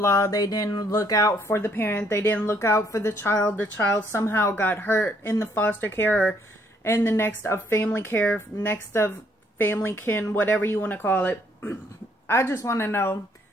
They didn't look out for the parent. They didn't look out for the child. The child somehow got hurt in the foster care, or in the next of family care, next of family kin, whatever you want to call it. I just want to know.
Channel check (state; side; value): normal; both; correlation 0.68